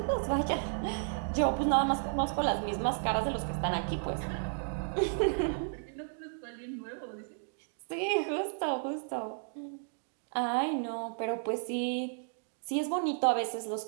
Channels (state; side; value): silent; left; digital silence